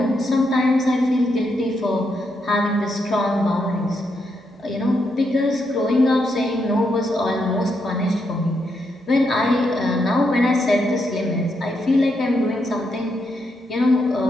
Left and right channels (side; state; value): both; normal; correlation 0.80